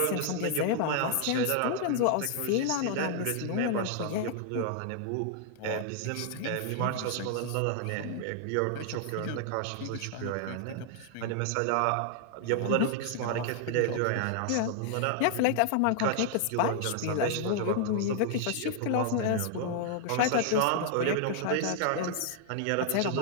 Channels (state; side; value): different; both; correlation -0.01